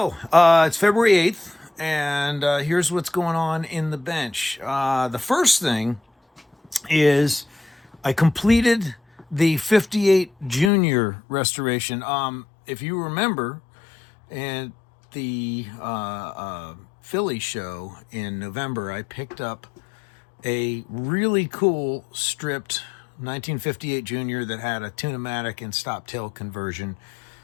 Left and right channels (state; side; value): drops out; right; at 10.7 s